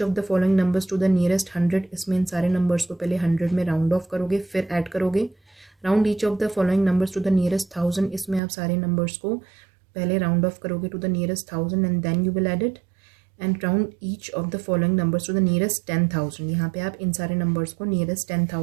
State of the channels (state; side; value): drops out; left; at 8.4 s